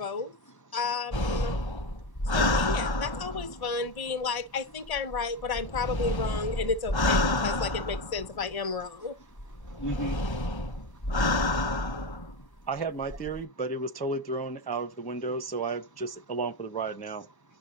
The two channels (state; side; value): late; right; 1.0 ms